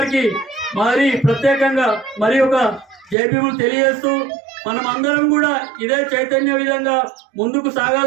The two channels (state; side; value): drops out; left; at 3.2 s